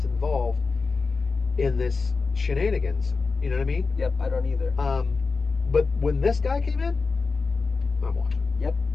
involved in this shenanigans. You know what I mean?" Yep, I don't either. But when this guy came in, I'm watching. Yep,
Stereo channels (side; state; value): right; quieter; 4.3 dB